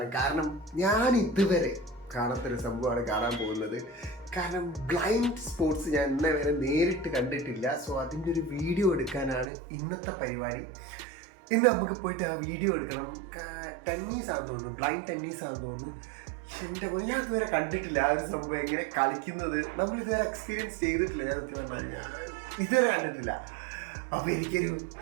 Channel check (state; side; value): drops out; left; at 9.5 s